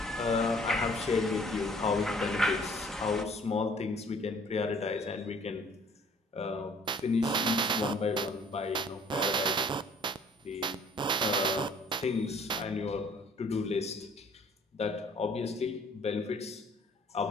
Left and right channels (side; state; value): both; normal; correlation 0.56